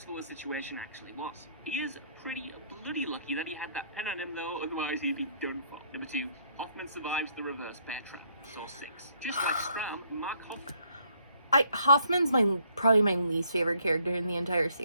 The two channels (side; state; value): both; inverted; correlation -0.67